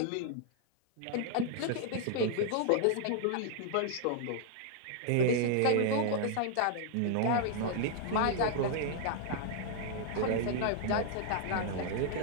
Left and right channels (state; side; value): different; both; correlation 0.00